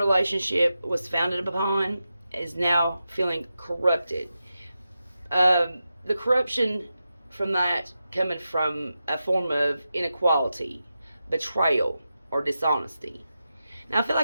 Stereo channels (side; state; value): both; inverted; correlation -0.90